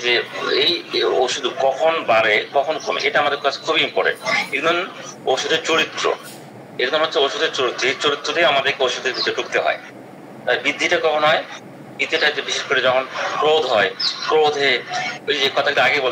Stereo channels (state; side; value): identical; both; correlation 1.00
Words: যে এই ওষুধ কখন বাড়ে কখন কমে, এটা আমাদের কাছে খুবই ইম্পর্টেন্ট। একদম ওষুধের চরিত্র, একদম হচ্ছে ওষুধের চরিত্র, এই চরিত্র দিয়ে আমাদেরকে ওষুধের ভিতরে ঢুকতে হয়। বৃদ্ধিটা কখন হয়? বৃদ্ধিটা বিশেষ করে যখন ক্রোধ হয়, ক্রোধে ওই যে কথাটা আগে